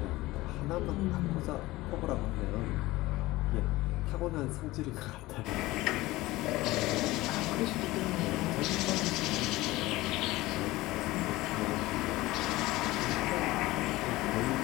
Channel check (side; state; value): right; quieter; 18.9 dB